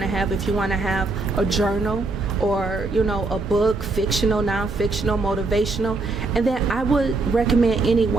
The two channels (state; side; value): quieter; left; 3.5 dB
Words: to have. If you want to have a journal, or a book, fictional, non-fictional, motivational, and then I would recommend